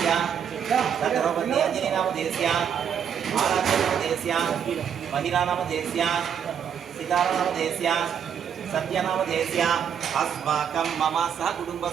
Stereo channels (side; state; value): left; quieter; 8.1 dB